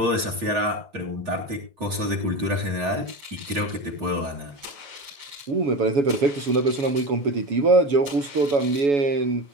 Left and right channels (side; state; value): left; late; 7.1 ms